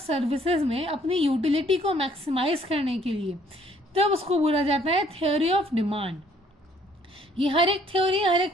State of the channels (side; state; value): both; normal; correlation 0.62